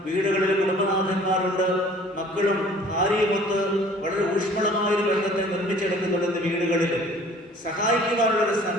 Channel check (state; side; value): normal; both; correlation 0.51